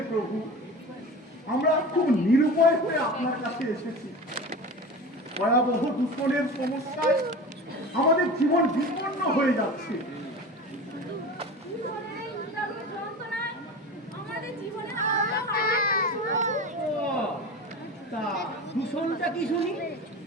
প্রভু, আমরা খুব নিরুপায় হয়ে আপনার কাছে এসেছি। ভয়াবহ দূষণের সমস্যায় আমাদের জীবন বিপন্ন হয়ে যাচ্ছে। দূষণের এই নিদারুণ যন্ত্রণায় আমাদের জীবনের আলোটা হারিয়ে ফেলেছি প্রভু। ও, তা দূষণটা কি শুনি?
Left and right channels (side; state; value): both; normal; correlation 0.32